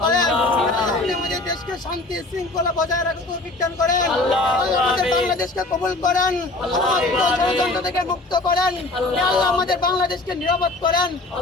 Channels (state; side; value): quieter; right; 3.0 dB